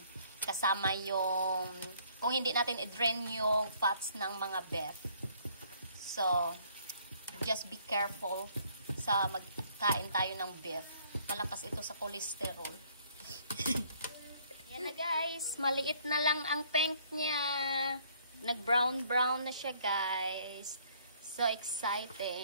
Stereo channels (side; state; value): both; inverted; correlation -0.62